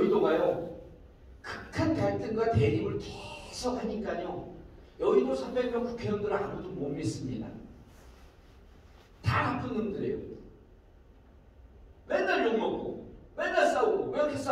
극한 갈등과 대립을 계속 하니까요, 여의도 300명 국회의원들은 아무도 못 믿습니다. 다 나쁜 놈들이에요. 맨날 욕먹고, 맨날 싸우고. 왜 이렇게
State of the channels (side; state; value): both; identical; correlation 1.00